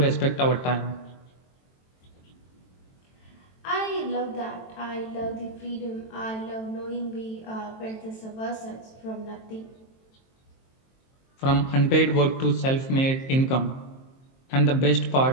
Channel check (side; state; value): right; late; 23 ms